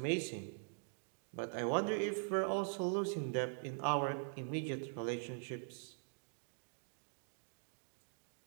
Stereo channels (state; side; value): silent; left; digital silence